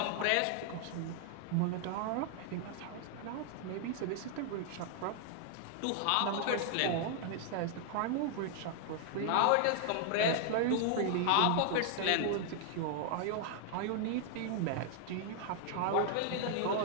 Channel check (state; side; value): different; both; correlation 0.00